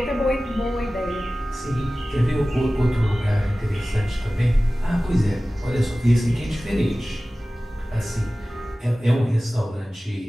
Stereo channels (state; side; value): normal; both; correlation 0.97